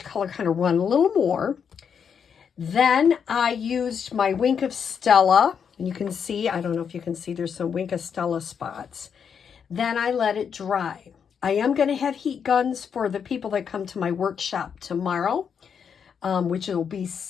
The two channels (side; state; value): right; quieter; 7.1 dB